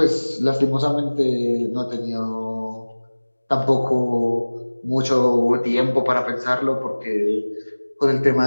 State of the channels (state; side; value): inverted; both; correlation -1.00